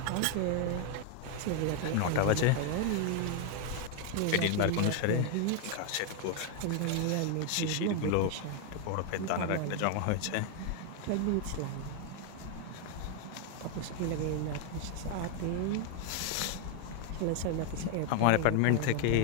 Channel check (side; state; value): both; different; correlation 0.01